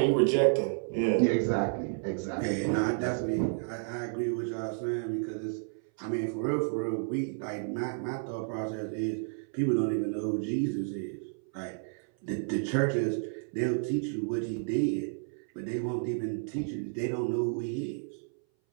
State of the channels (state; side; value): silent; left; 57 dB below the other